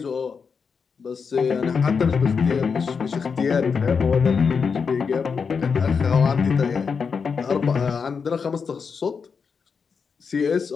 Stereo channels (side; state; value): right; quieter; 5.7 dB